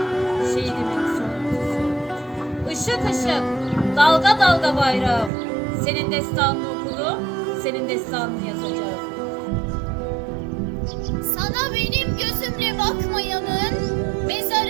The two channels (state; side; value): drops out; left; at 5.3 s